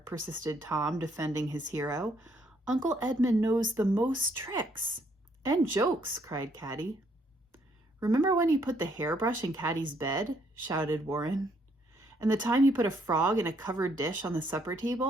persisted Tom, defending his hero, "Uncle Edmund knows the most tricks." "And jokes," cried Caddie. "Remember when he put the hairbrush in Caddie's bed?" shouted Warren. "And the time he put a frog in a covered dish on the supper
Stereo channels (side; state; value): both; normal; correlation 0.69